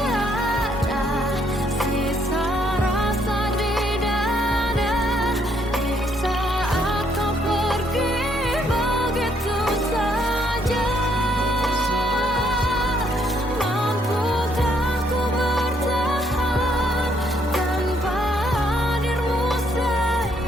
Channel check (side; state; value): both; normal; correlation 0.70